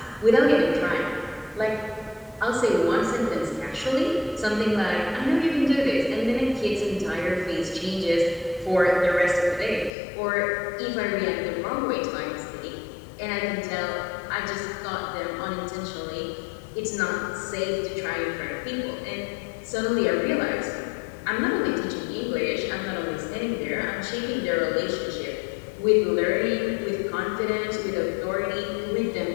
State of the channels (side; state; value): right; drops out; at 9.9 s